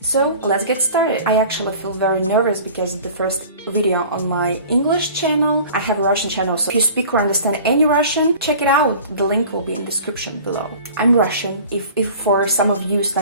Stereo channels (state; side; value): inverted; both; correlation -0.43